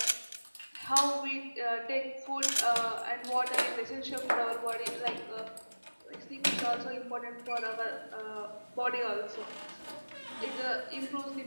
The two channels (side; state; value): both; inverted; correlation -1.00